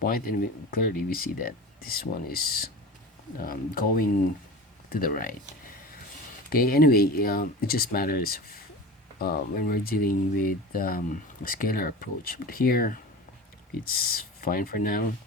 and clearly we see that this one is going to the right. Okay, anyway, it just matters when we're dealing with a scalar approach. But here, it's fine for now.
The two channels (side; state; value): both; normal; correlation 0.32